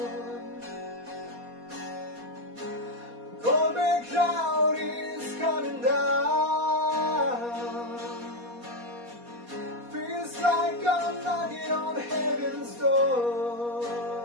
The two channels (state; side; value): late; left; 4.2 ms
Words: Cold and cloud is coming down. Feels like I'm knocking on heaven's door.